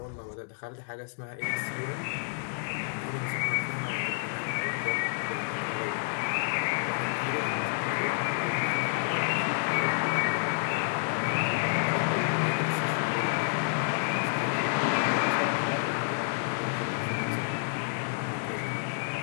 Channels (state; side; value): silent; right; 57 dB below the other